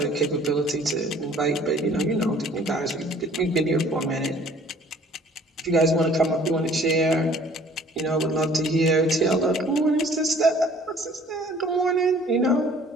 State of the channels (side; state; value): both; normal; correlation 0.53